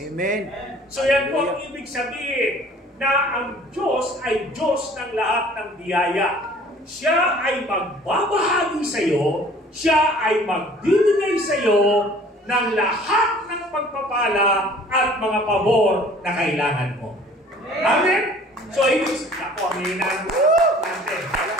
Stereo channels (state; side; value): normal; both; correlation 0.51